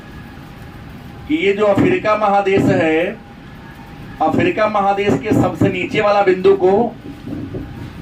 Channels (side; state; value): both; identical; correlation 1.00